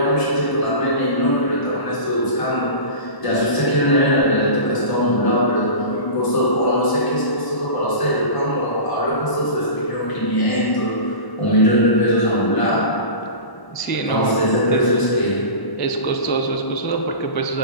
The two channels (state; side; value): late; right; 1.0 ms